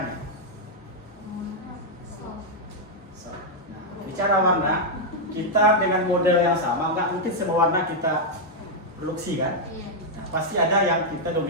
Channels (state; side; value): normal; both; correlation -0.03